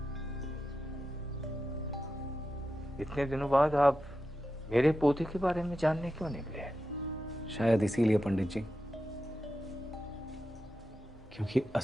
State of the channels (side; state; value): both; normal; correlation 0.90